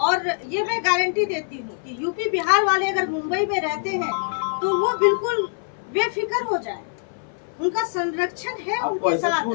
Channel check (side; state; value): right; silent; 57 dB below the other